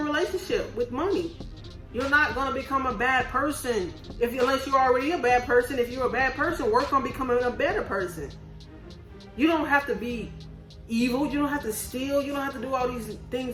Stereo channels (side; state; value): both; identical; correlation 1.00